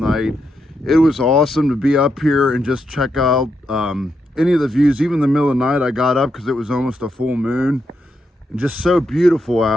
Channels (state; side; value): normal; both; correlation 0.82